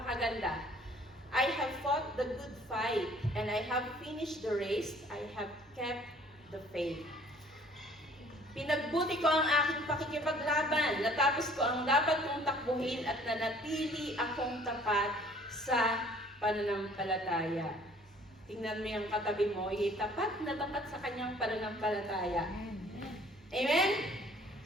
I have fought the good fight, and I have finished the race, I have kept the faith. Pinagbuti ko ang aking pakikipaglaban, natapos ko ang dapat kong takbuhin at nanatili akong tapat sa pananampalataya. Tingnan mo yung katabi mo, tapat na tapat sa kanyang pananampalataya. Amen?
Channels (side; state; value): both; normal; correlation 0.55